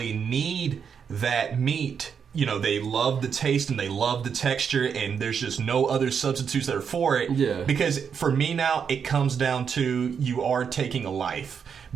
need that meat, you know, they love the taste and they love the texture, and there's just no other substitutes that are for it. Yeah. Because for me now, it comes down to you are taking a life.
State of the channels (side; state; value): left; quieter; 6.9 dB